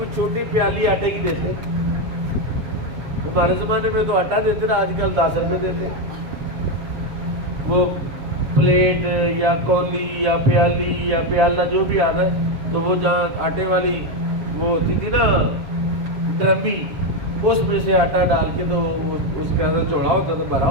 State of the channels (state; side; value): late; left; 7.1 ms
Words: چھوٹی پیالی آٹے کی دیتے۔ ہمارے زمانے میں تو آٹا دیتے نا، آج کل 10 روپے دیتے۔ وہ پلیٹ یا کولی یا پیالی یا پیالہ جو بھی آتا ہے، تو وہ جہاں آٹے والی وہ ہوتی تھی نا ڈرمی، اس میں سے آٹا ڈال کے تو اس کا ایسا چوڑا ہوتا تھا، بھرا